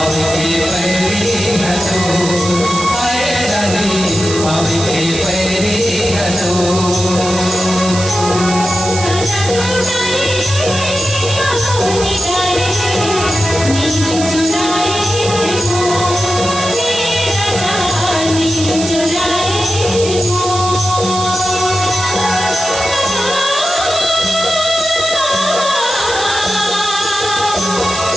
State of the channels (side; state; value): right; noise; hiss, 7 dB below the sound